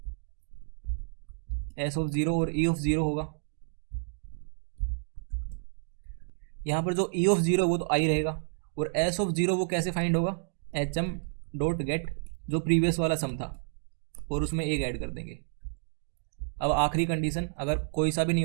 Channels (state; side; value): silent; left; digital silence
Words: और ई ऑफ ज़ीरो होगा। यहाँ पर जो ई ऑफ ज़ीरो वो तो आई रहेगा, और एस ऑफ ज़ीरो वो कैसे फाइंड होगा, एच एम डॉट गेट जो प्रीवियस वाला सम था और उसमें एक ऐड कर देंगे। अब आखिरी कंडीशन, अगर कोई सा भी नहीं